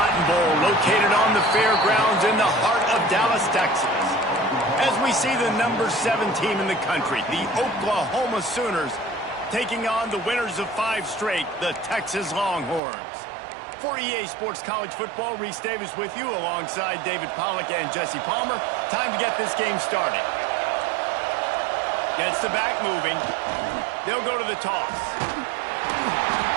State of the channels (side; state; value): left; drops out; at 12.8 s